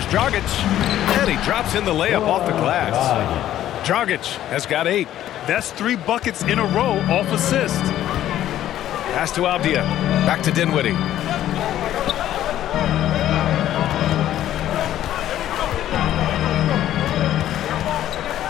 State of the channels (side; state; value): right; quieter; 12.3 dB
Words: Dragic. And he drops in the layup off the glass. Dragic has got 8. That's 3 buckets in a row off assist. Pass to Avdia. Back to Dinwiddie.